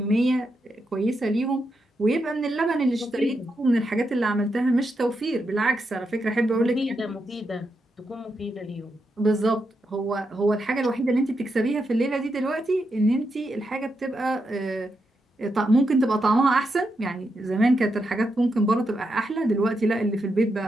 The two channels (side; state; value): both; normal; correlation 0.84